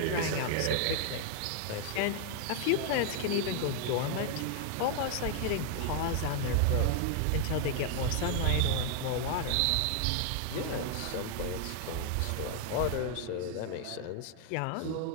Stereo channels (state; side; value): different; both; correlation 0.00